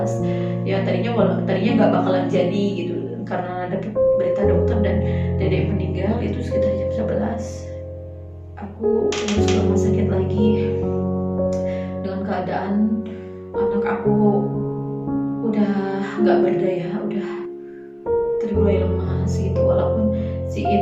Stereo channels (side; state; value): both; identical; correlation 1.00